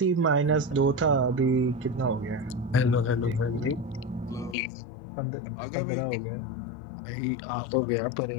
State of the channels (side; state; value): right; drops out; at 4.5 s